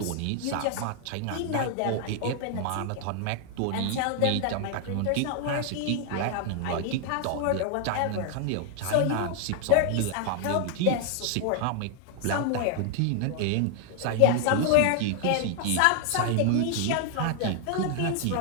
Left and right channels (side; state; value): both; different; correlation 0.00